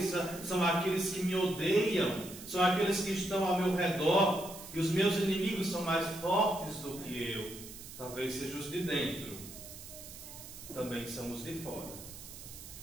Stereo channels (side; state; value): right; noise; hiss, 14 dB below the sound